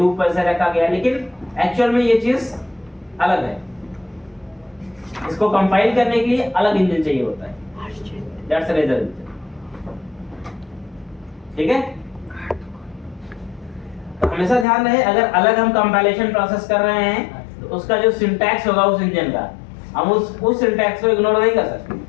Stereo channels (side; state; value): right; drops out; at 14.7 s